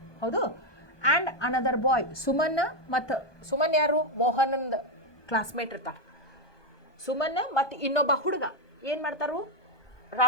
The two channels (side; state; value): right; late; 1.2 ms